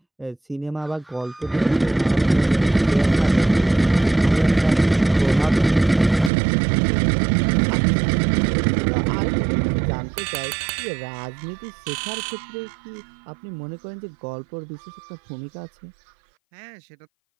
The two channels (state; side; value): drops out; left; at 6.3 s